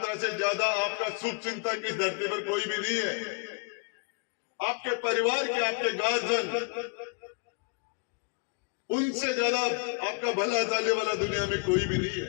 से ज्यादा आपका शुभ चिंतक इस धरती पर कोई भी नहीं है। आपके परिवार के, आपके गार्जियन, उनसे ज्यादा आपका भला चाहने वाला दुनिया में कोई भी नहीं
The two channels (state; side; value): quieter; right; 33.9 dB